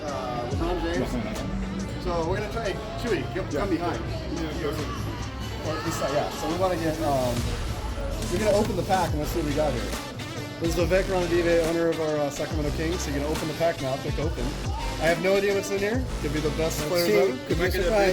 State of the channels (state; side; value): identical; both; correlation 1.00